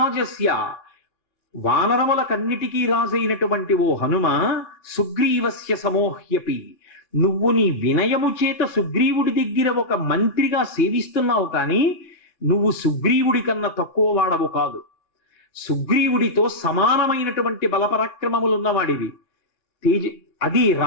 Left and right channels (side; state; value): right; late; 4.3 ms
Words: వానరములకన్నిటికీ రాజైనటువంటి ఓ హనుమ, సుగ్రీవస్య సమోహ్యపి, నువ్వు నీ వినయము చేత సుగ్రీవుడి దగ్గర ఒక మంత్రిగా సేవిస్తున్నావు, కానీ నువ్వు సుగ్రీవుడి కన్నా తక్కువ వాడవు కాదు. సుగ్రీవుడితో సమానమైనటువంటి బలపరాక్రమములున్నవాడివి. అది